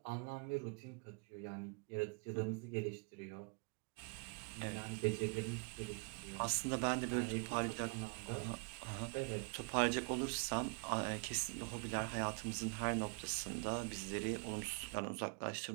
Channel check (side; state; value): left; quieter; 36.1 dB